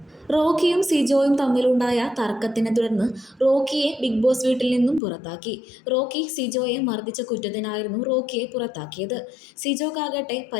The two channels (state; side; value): drops out; right; at 5.0 s